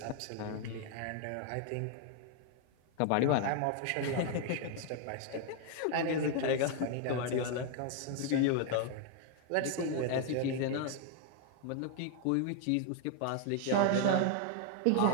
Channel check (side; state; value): both; different; correlation 0.00